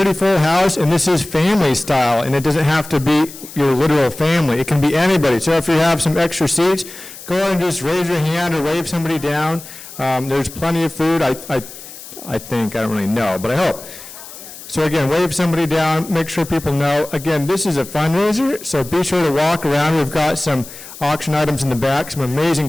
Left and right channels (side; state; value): left; noise; hiss, 15 dB below the sound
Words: full house, and this is family style, and it doesn't have to be your literal family. It can be anybody. So if you have some extra seats, go ahead and just raise your hand or wave somebody down. There's plenty of food, I think. I don't really know, but I hope. So again, wave somebody down, make sure people know. Again, this is a fundraiser, so be sure to walk around. We've got some auction items in the back, some amazing